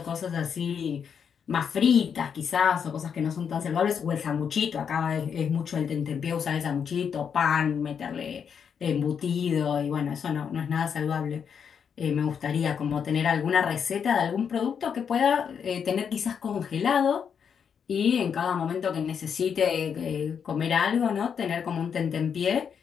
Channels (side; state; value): right; quieter; 7.2 dB